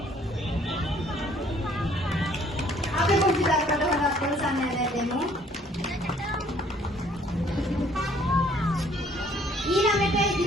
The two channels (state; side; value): normal; both; correlation 0.60